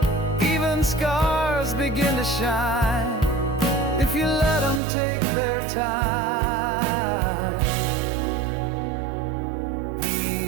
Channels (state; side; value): drops out; left; at 4.8 s